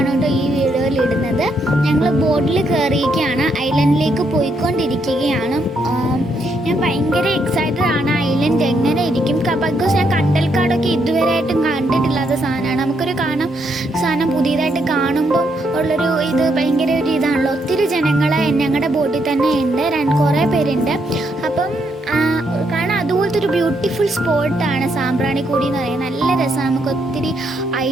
കേട്ടോ ഈ വീഡിയോയിൽ ഇടുന്നത്. ഞങ്ങൾ ബോട്ടിൽ കയറിയിരിക്കുകയാണ്, ഐലൻഡിലേക്ക് പോയിക്കൊണ്ടിരിക്കുകയാണ്. ഞാൻ ഭയങ്കര എക്സൈറ്റഡ് ആണ്. ഐലൻഡ് എങ്ങനെ ഇരിക്കും, ബിക്കോസ് ഞാൻ കണ്ടൽക്കാടൊക്കെ ഇതുവരെയായിട്ടും കണ്ടിട്ടില്ലാത്ത സാധനമാണ്. നമുക്കൊരു സാധനം പുതിയതായിട്ട് കാണുമ്പോൾ ഉള്ളൊരു ഇത് ഭയങ്കര ഒരു ഇതാണല്ലോ. ഒത്തിരി ജനങ്ങൾ ഞങ്ങളുടെ ബോട്ടിൽ തന്നെ ഉണ്ട്, കുറേ പേരുണ്ട്. അപ്പം കാരണം അതുപോലത്തെ ഒരു ബ്യൂട്ടിഫുൾ സ്പോട്ടാണ് സാമ്പ്രാണിക്കൊടി എന്ന് പറയുന്നത്. നല്ല രസമാണ്. നമുക്ക് ഒത്തിരി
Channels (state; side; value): normal; both; correlation 0.76